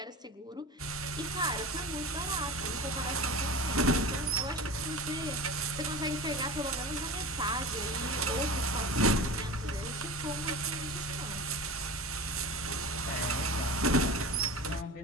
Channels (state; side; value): normal; both; correlation 0.31